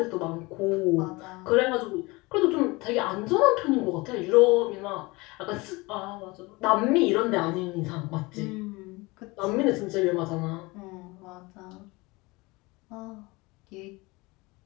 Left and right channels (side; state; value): right; quieter; 23.8 dB